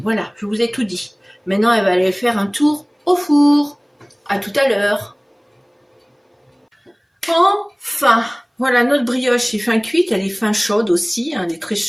je vous ai tout dit. Maintenant, elle va aller faire un tour au four. À tout à l'heure. Enfin, voilà, notre brioche est fin cuite, elle est fin chaude aussi, hein, elle est très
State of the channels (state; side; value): identical; both; correlation 1.00